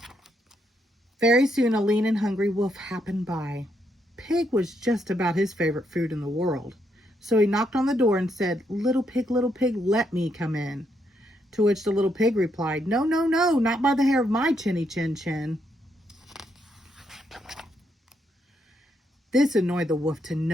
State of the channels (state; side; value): normal; both; correlation 0.77